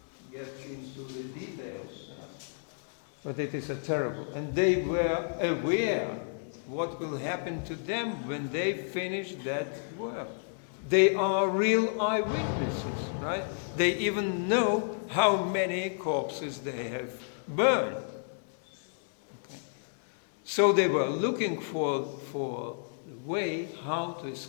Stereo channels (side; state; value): right; silent; digital silence